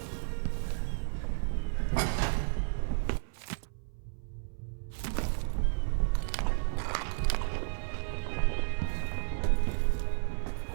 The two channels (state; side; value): silent; left; 56 dB below the other